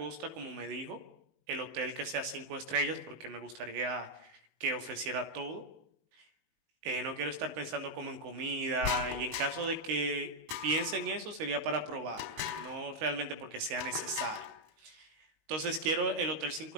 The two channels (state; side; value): late; left; 19 ms